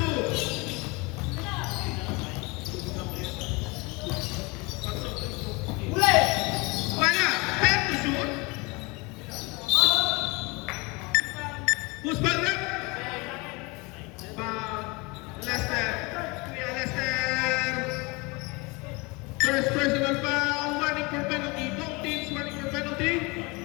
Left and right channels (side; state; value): right; quieter; 26.6 dB